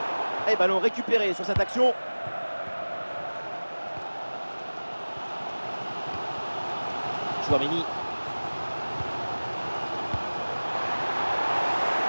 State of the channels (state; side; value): inverted; both; correlation -1.00